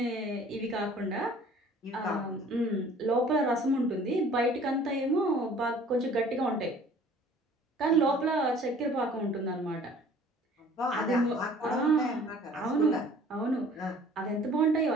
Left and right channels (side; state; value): both; normal; correlation 0.51